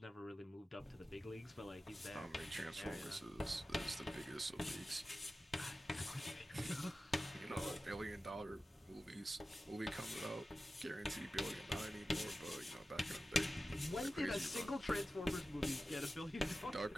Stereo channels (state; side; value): normal; both; correlation 0.94